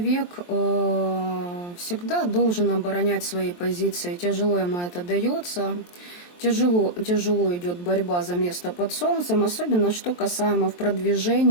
всегда должен оборонять свои позиции. Тяжело ему это дается. тяжело идет борьба за место под солнцем, особенно что касаемо в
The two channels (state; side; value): late; right; 23 ms